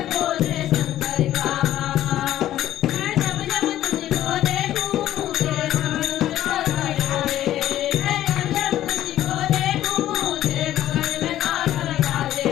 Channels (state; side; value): quieter; right; 12.9 dB